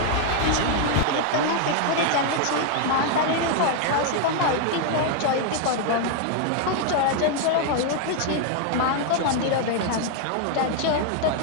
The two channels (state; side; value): different; both; correlation 0.00